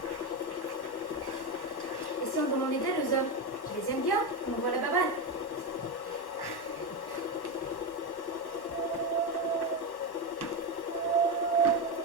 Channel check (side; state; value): right; late; 1.1 ms